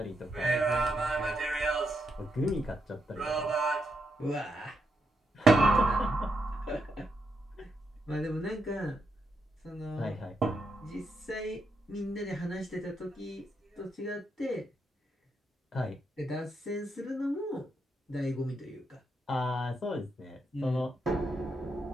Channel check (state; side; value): normal; both; correlation 0.81